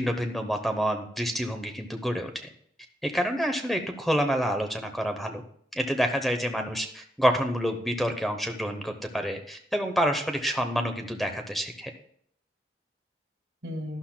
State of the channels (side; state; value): both; normal; correlation 0.81